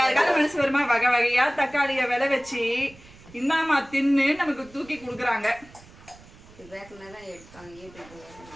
மனசு வருமா? வகை வகையா தக்காளிய விலை வச்சு இந்தாமா தின்னு நமக்கு தூக்கி கொடுக்குறாங்க.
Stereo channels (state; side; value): noise; right; rumble, 22 dB below the sound